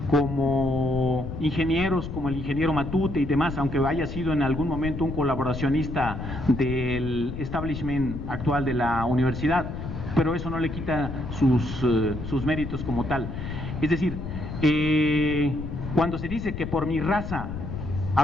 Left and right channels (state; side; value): noise; left; rumble, 7 dB below the sound